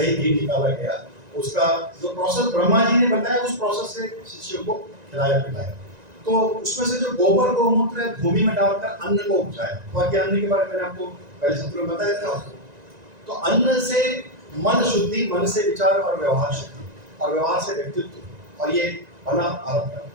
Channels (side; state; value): left; late; 1.9 ms